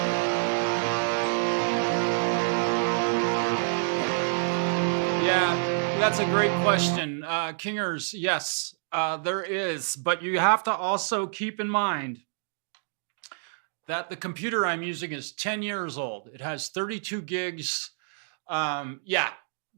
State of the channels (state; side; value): silent; left; digital silence